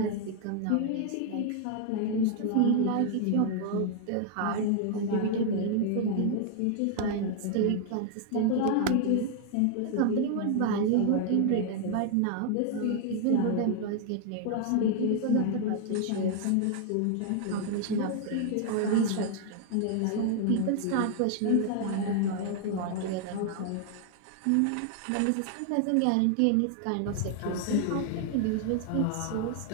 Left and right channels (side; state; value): both; different; correlation 0.00